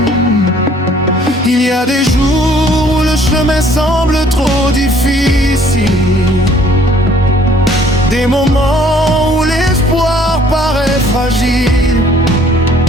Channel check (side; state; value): both; normal; correlation 0.59